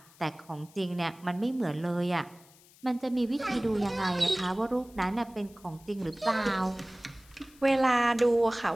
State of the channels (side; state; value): left; noise; hiss, 26 dB below the sound